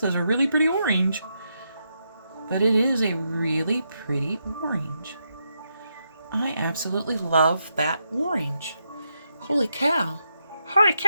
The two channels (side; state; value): both; inverted; correlation -0.82